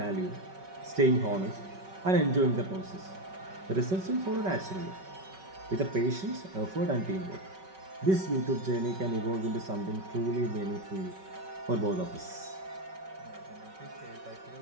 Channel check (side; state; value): left; late; 5.3 ms